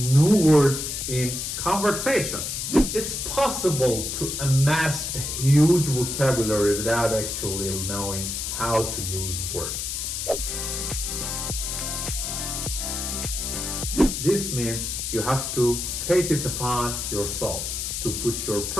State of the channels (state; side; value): noise; left; hiss, 3 dB below the sound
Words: new words in conversation. It's possible to amass a huge vocabulary without actually knowing how to use words. This means you have to take it upon yourself to put your